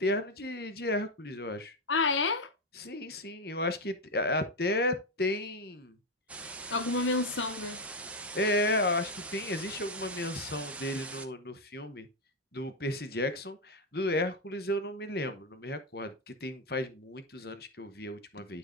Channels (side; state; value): both; normal; correlation 0.06